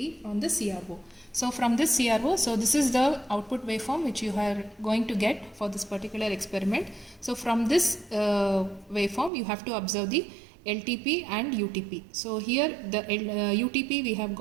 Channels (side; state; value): left; drops out; at 9.3 s